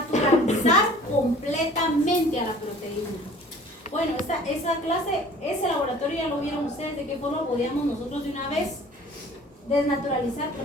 completamente a la proteína. Bueno, esa clase, ese laboratorio ya lo vieron ustedes, de qué forma podíamos nosotros de una vez desnaturalizar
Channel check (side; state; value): both; normal; correlation 0.48